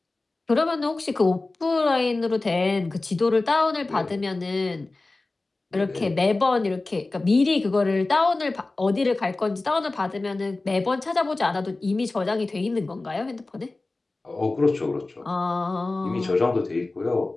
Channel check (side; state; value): right; quieter; 3.2 dB